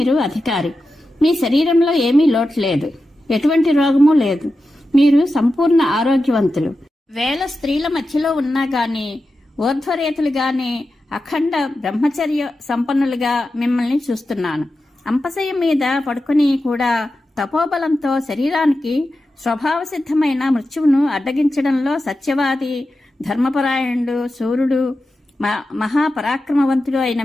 అధికారి. మీ శరీరంలో ఏమీ లోటు లేదు, ఎటువంటి రోగము లేదు. మీరు సంపూర్ణ ఆరోగ్యవంతులు. వేల స్త్రీల మధ్యలో ఉన్నా గాని, ఊర్ధ్వరేతులు గాని, అఖండ బ్రహ్మచర్య సంపన్నులుగా మిమ్మల్ని చూస్తున్నాను. అంపశయ్య మీద పడుకుని కూడా తపోబలంతో శరీరానికి స్వభావసిద్ధమైన మృత్యువును అడ్డగించడంలో సత్యవాది, ధర్మపరాయణుడు, సూర్యుడు, మహాపరాక్రమవంతుడు అయిన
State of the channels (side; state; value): both; normal; correlation 0.91